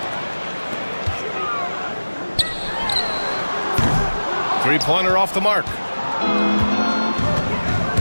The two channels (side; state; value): both; inverted; correlation -1.00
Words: Three-pointer off the mark.